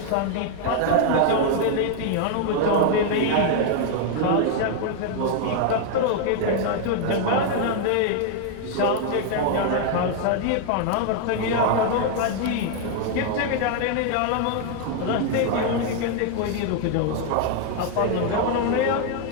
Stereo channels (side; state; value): both; different; correlation 0.00